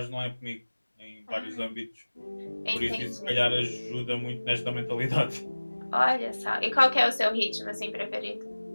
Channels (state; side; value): inverted; both; correlation -1.00